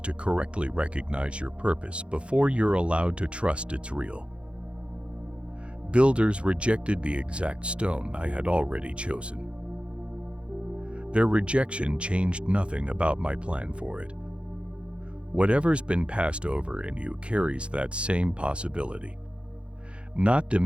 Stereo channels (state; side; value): late; left; 0.059 ms